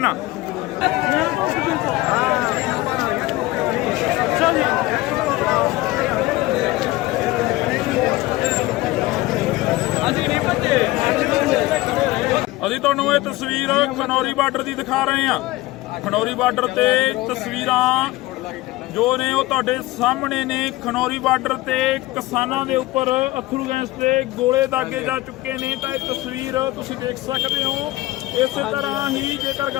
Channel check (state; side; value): quieter; right; 18.8 dB